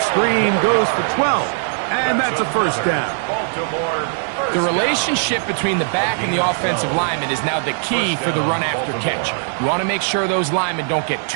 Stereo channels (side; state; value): left; silent; digital silence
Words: screen goes for 12, and that's a first down. The relationship between the back and the offensive lineman is now the key for the run after catch. You want to make sure those linemen don't get